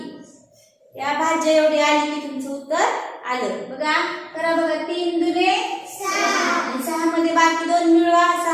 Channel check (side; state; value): both; identical; correlation 1.00